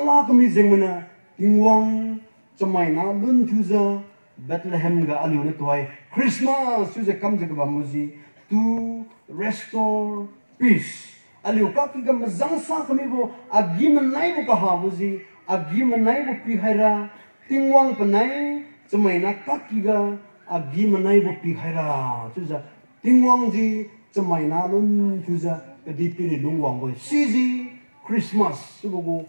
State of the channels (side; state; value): both; inverted; correlation -1.00